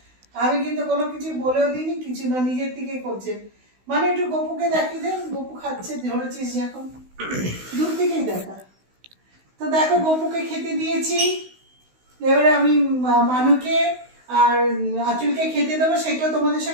আমি কিন্তু কোনো কিছু বলেও দিইনি, কিছু না, নিজের দিকে করছে। মানে একটু গপুকে দেখিয়ে দেন, গপু খাচ্ছে, ধরেছিস যে এখন দূর থেকেই দেখা। তো দেখো গপুকে খেতে দিয়েছি, এবারে আমি মানুকে আর আঁচলকে খেতে দেবো, সেটাও তোমাদের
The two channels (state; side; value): late; left; 16 ms